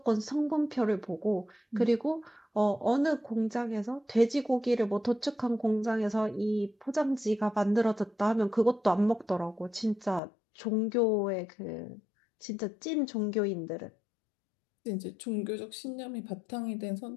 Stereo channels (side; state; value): right; drops out; at 10.2 s